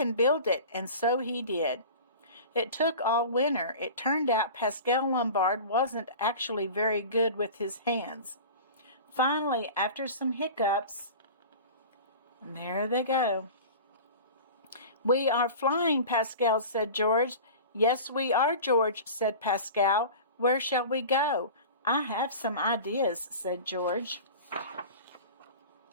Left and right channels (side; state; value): both; inverted; correlation -0.36